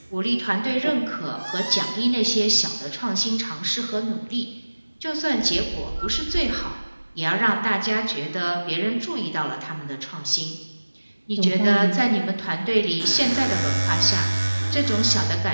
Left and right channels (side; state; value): both; inverted; correlation -1.00